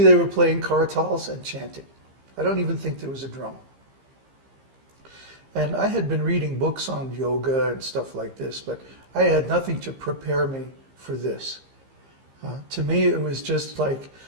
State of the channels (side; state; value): left; late; 15 ms